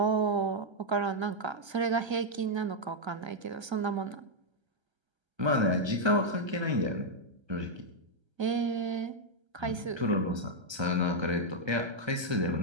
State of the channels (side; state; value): left; late; 1.3 ms